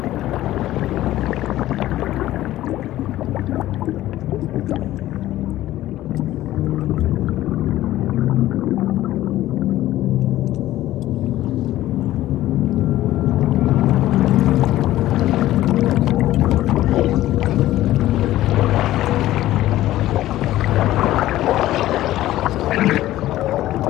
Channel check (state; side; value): quieter; right; 14.8 dB